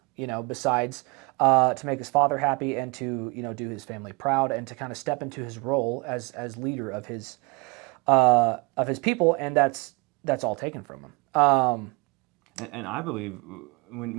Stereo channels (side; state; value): left; quieter; 28.6 dB